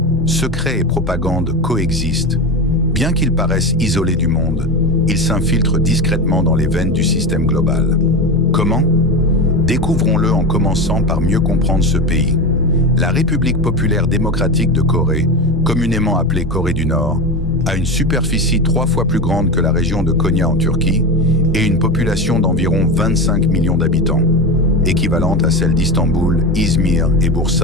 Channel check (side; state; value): both; normal; correlation 0.21